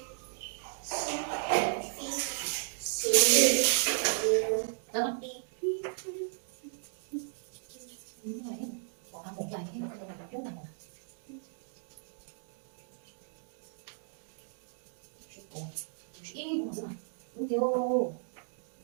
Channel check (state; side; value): silent; left; digital silence